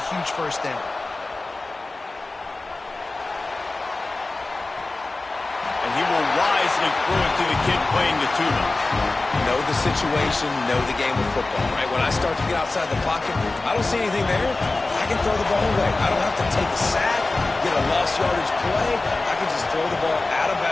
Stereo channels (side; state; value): right; quieter; 3.2 dB